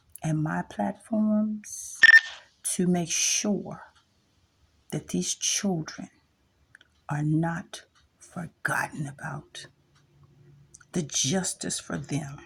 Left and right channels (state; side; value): identical; both; correlation 1.00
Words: and my platforms to make sure that these children are not forgotten about. The justice for them